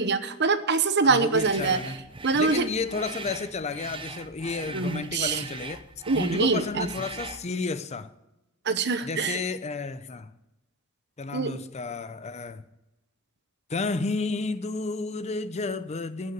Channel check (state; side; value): normal; both; correlation 0.08